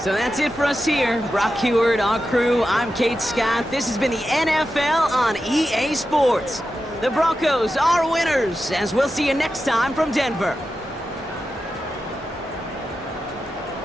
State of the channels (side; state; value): both; normal; correlation 0.91